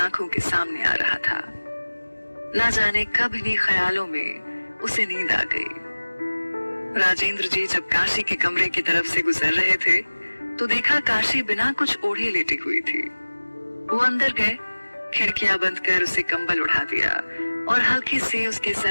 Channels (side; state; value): both; inverted; correlation -1.00